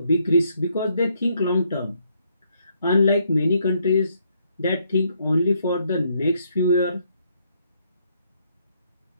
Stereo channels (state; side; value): inverted; both; correlation -0.73